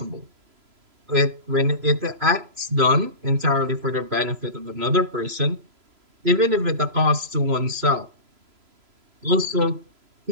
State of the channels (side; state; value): left; late; 3.0 ms